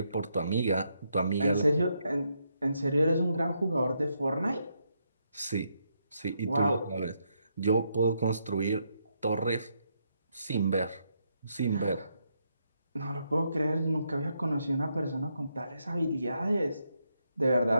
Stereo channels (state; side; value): inverted; both; correlation -0.78